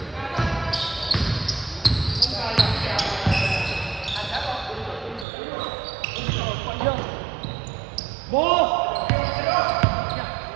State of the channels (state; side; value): drops out; left; at 5.2 s